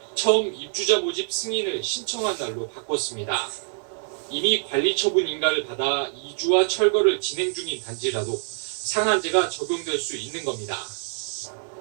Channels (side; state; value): left; silent; 62 dB below the other